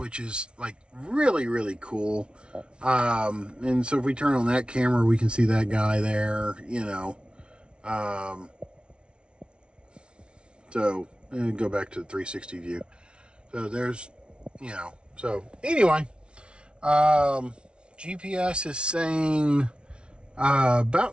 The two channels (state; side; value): late; left; 0.057 ms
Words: is like really cool. And so if we turn on that camera, we can see that guy there, so and go back to the 360 view. So there's, so anyway, GPS is saying